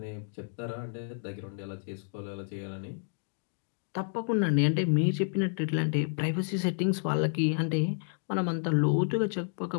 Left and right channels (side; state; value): right; silent; digital silence